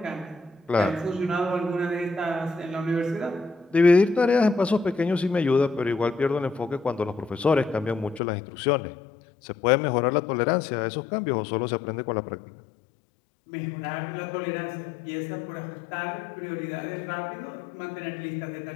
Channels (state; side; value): drops out; right; at 8.2 s